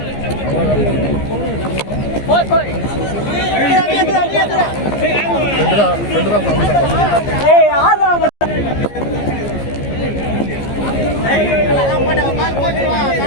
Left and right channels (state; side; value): late; right; 14 ms